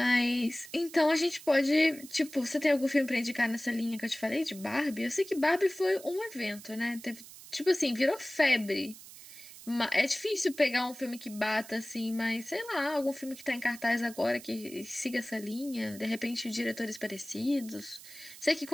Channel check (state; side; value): noise; right; hiss, 17 dB below the sound